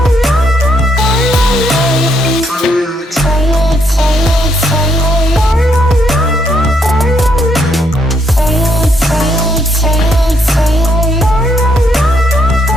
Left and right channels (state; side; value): normal; both; correlation 0.73